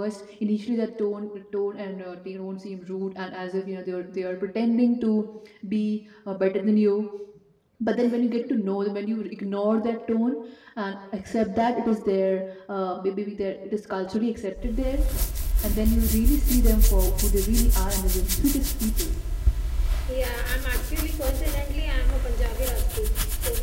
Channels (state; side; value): identical; both; correlation 1.00